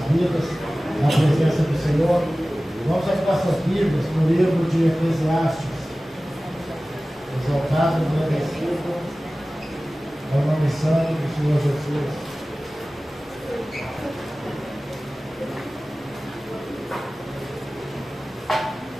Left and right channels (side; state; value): both; normal; correlation 0.97